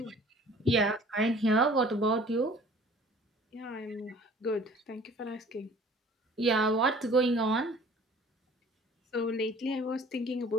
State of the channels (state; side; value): normal; both; correlation 0.50